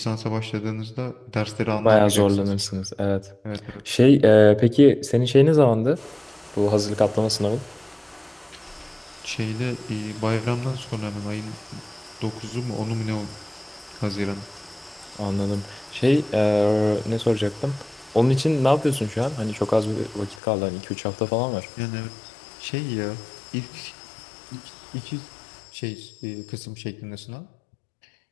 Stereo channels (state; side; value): drops out; right; at 20.4 s